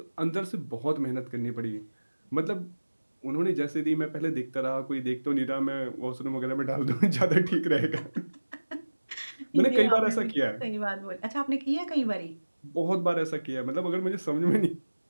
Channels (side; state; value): both; inverted; correlation -1.00